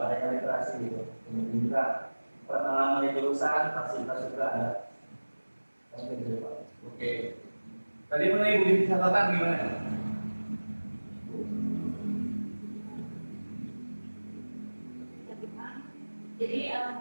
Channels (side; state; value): both; inverted; correlation -1.00